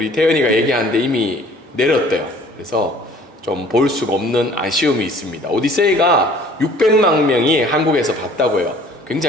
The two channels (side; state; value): both; normal; correlation 0.53